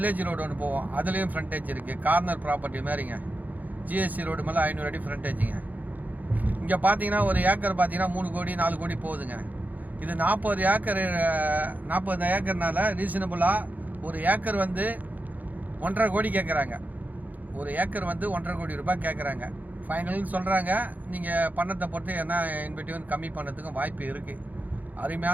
ரோடு ஒன்று போவோம், அதுலேயும் ஃப்ரண்டேஜ் இருக்குது. கார்னர் ப்ராப்பர்ட்டி மாதிரிங்க. ஜிஎஸ்டி ரோடு மேலே 500 அடி ஃப்ரண்டேஜுங்க. இங்கே பார்த்தீங்கன்னா ஒரு ஏக்கர் பார்த்தீங்கன்னா 3 கோடி 4 கோடி போகுதுங்க. இது 40 ஏக்கர்னால ரீசனபுளாக ஒரு ஏக்கர் வந்து 1.5 கோடி கேட்குறாங்க. ஒரு ஏக்கர் வந்து 1.5 கோடி ரூபாய் கேட்குறாங்க. ஃபைனல்னு சொல்கிறாங்க. நீங்கள் பணத்தை பொறுத்து என்ன இன்வெட்டிவ் கம்மி பண்ணதுக்கும் வாய்ப்பு இருக்குது.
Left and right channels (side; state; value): left; late; 0.081 ms